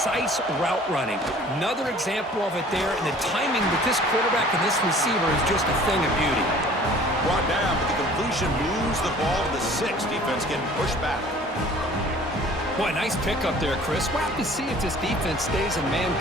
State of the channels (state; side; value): normal; both; correlation 0.50